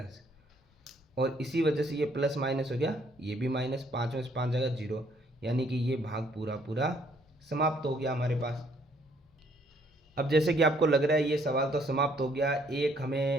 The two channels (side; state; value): both; normal; correlation 0.65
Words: और इसी वजह से ये प्लस माइनस हो गया, ये भी माइनस। 5 में से 5 जाएगा 0, यानी कि ये भाग पूरा पूरा समाप्त हो गया हमारे पास। अब जैसे कि आपको लग रहा है ये सवाल तो समाप्त हो गया, एक